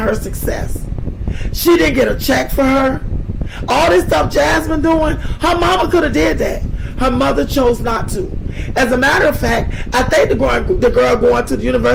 her success. She didn't get a check for her. All this stuff Jasmine doing, her mama could have did that. Her mother chose not to. As a matter of fact, I think the girl going to the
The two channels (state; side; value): identical; both; correlation 1.00